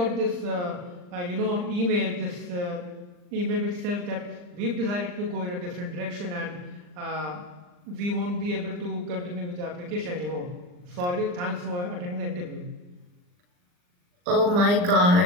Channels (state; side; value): late; left; 39 ms